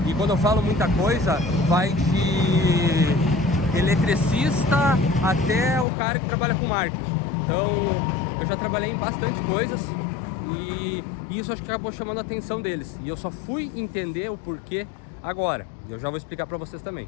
E quando eu falo muita coisa, vai de eletricista até o cara que trabalha com marketing. Então eu já trabalhei em bastante coisas e isso acho que acabou chamando a atenção deles. E eu só fui entender o porquê agora. Eu já vou explicar para vocês também.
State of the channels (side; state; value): right; drops out; at 5.9 s